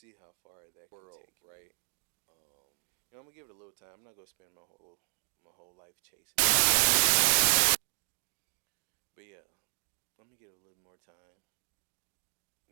how far that can take me. Right? I'm gonna give it a little time. I'm not gonna spend my whole life chasing it. But let me give it a little more time.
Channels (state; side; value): silent; left; digital silence